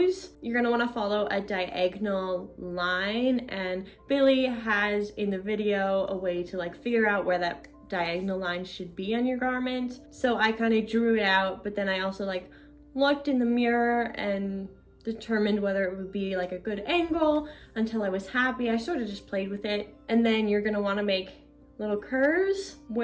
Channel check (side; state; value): both; identical; correlation 1.00